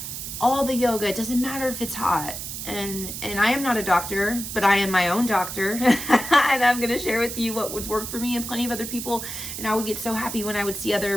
all the yoga, it doesn't matter if it's hot. And I am not a doctor, but I am my own doctor. And I'm going to share with you what would work for me and plenty of other people. And I would get so happy when I would see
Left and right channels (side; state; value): right; noise; hiss, 7 dB below the sound